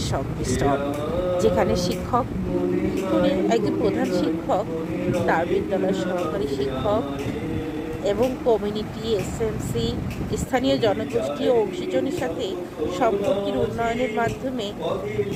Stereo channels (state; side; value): identical; both; correlation 1.00